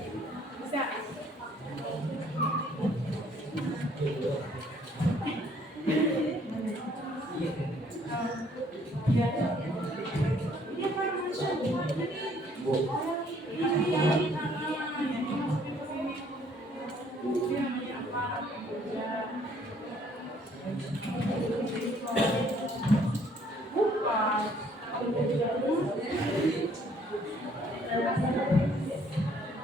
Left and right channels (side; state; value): both; normal; correlation 0.62